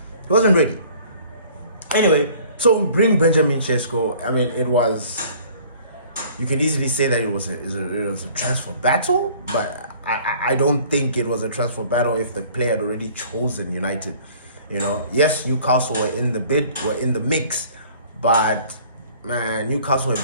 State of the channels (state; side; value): inverted; both; correlation -0.52